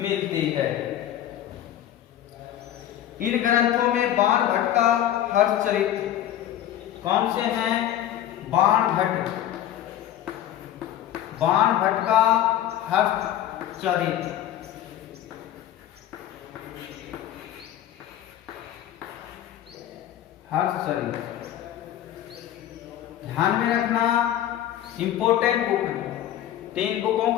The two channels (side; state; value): right; quieter; 11.9 dB